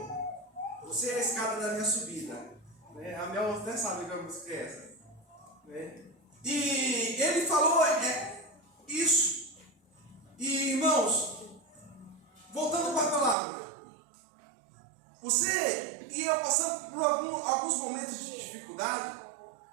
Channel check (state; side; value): drops out; left; at 13.4 s